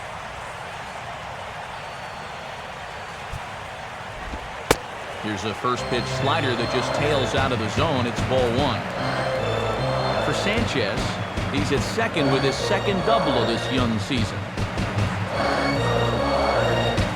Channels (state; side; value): identical; both; correlation 1.00